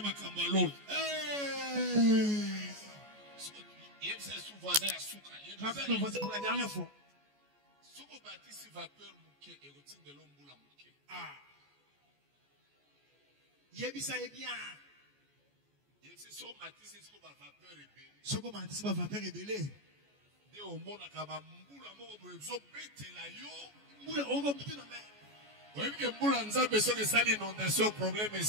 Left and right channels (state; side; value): late; left; 14 ms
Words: makambo l'eau. Yemse sou voisin ya suka. Rappelle mon voisin pour la dernière fois. Soko batisi vapeur muke et rotinde l'ombula muke. Yebisa bien. Yemse so matisi soko ba vapeur ebele. Soko matisi ba vapeur ebele. De omona ka ba mbula moko boye zo betela yo. Mbula ongo mtu na me. Oyebi ke mbula nzambe soki esali inondation problème